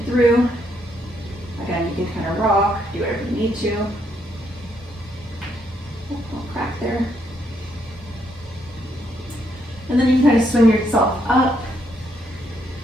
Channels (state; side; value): normal; both; correlation 0.75